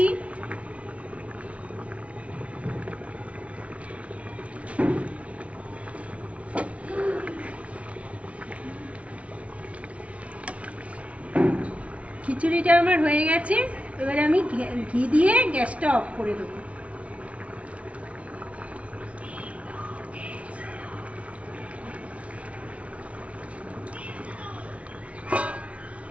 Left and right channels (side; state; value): left; late; 0.064 ms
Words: খিচুড়িটা আমার হয়ে গেছে। এবারে আমি ঘি দিয়ে গ্যাসটা অফ করে দেব।